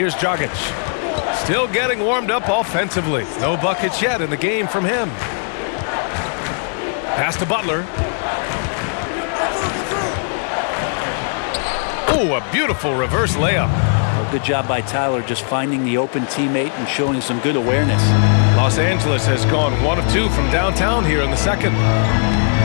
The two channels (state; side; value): silent; right; 59 dB below the other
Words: Dragic. Still getting warmed up offensively. No buckets yet in the game from him. Pass to Butler. Oh, a beautiful reverse layup. Well, good job by Tyler just finding the open teammate and showing some good awareness. Los Angeles has gone 1 of 2 from downtown here in the second.